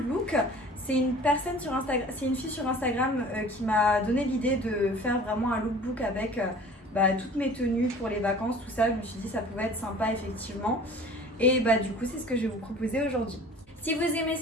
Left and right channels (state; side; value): normal; both; correlation 0.45